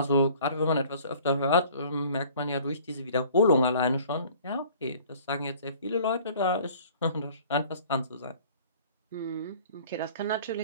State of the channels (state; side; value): inverted; both; correlation -0.50